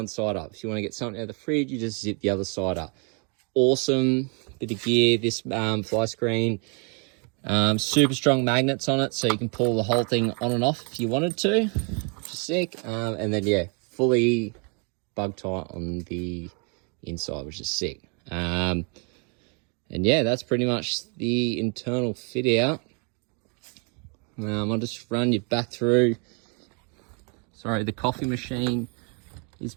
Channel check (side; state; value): left; quieter; 36.2 dB